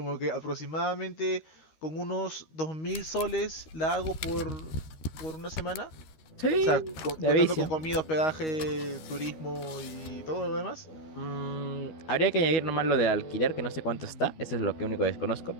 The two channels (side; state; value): right; late; 13 ms